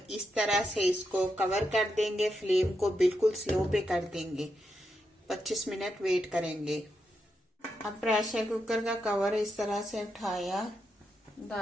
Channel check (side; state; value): both; normal; correlation 0.84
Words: इस तरह से इसको कवर कर देंगे। फ्लेम को बिल्कुल स्लो पे कर देंगे, 25 मिनट वेट करेंगे। अब प्रेशर कुकर का कवर इस तरह से उठाया,